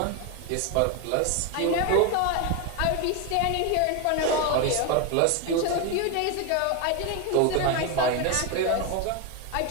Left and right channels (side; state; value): both; different; correlation 0.02